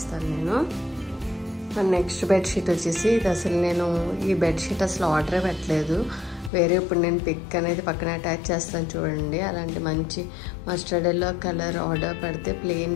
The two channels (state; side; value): drops out; right; at 6.5 s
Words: నేను. నెక్స్ట్ బెడ్షీట్ వచ్చేసి ఇది అసలు నేను ఈ బెడ్షీట్ అసలు ఆర్డరే పెట్టలేదు. వేరే ఇప్పుడు నేను పిక్ అనేది పక్కన అటాచ్ చేస్తాను చూడండి. అలాంటి మంచి మస్టర్డ్ ఎల్లో కలర్ ఆర్డర్ పెడితే ప్లెయిన్